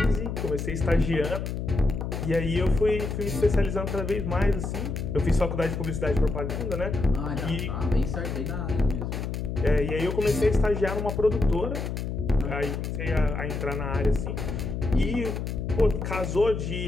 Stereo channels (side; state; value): left; noise; hum, 4 dB below the sound